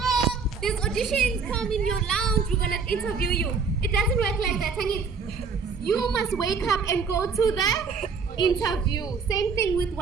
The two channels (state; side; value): quieter; left; 5.3 dB